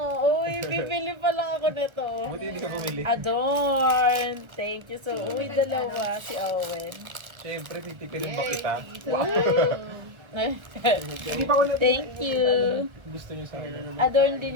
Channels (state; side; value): late; left; 1.2 ms